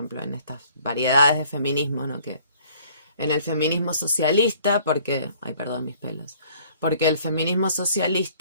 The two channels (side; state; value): both; inverted; correlation -0.57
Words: en estas variedades de feminismo, ¿no? Que en el feminismo socialista, porque, ay, perdón mis pelos, porque el feminismo